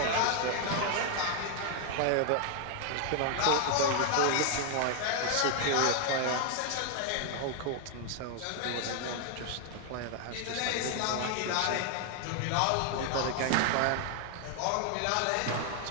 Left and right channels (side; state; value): both; different; correlation 0.00